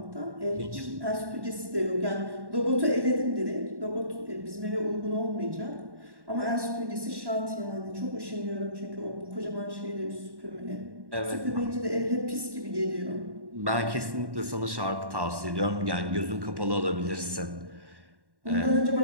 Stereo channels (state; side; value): late; left; 1.1 ms